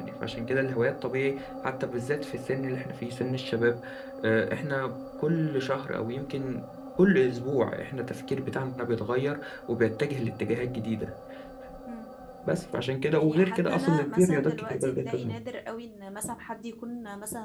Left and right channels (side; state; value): both; identical; correlation 1.00